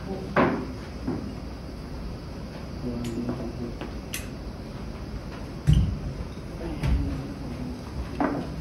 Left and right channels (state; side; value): identical; both; correlation 1.00